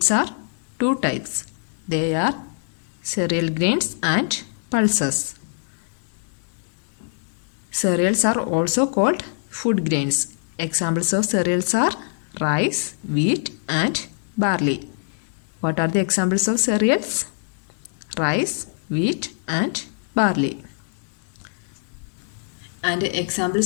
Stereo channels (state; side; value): silent; right; digital silence